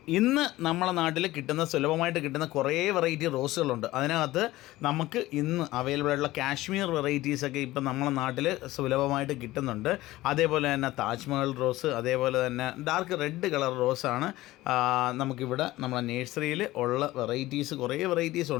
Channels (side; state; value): right; quieter; 17.4 dB